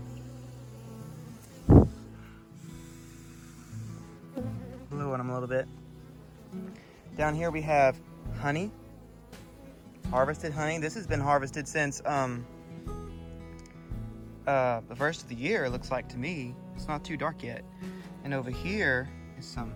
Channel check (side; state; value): both; identical; correlation 1.00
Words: blow on them a little bit. Down here we have honey, harvested honey. This has been harvested since the first of the year, it looks like to me. It's not too dark yet. And over here is some